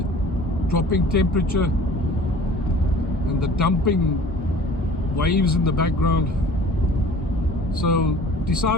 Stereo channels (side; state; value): both; normal; correlation 0.46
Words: dropping temperature and the dumping waves in the background. So